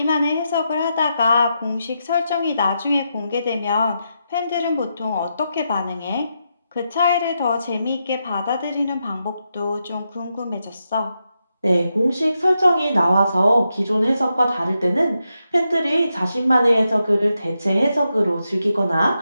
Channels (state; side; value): inverted; both; correlation -0.85